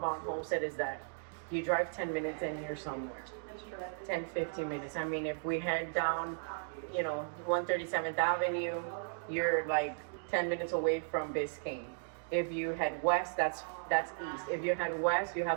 Homestead is that you drive 10 minutes and you're somewhere. 10, 15 minutes. I mean, if we head down, 137th Avenue, you're like 10 minutes away from Biscayne. If you head west, that's east. If you head west, you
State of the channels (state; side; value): silent; left; digital silence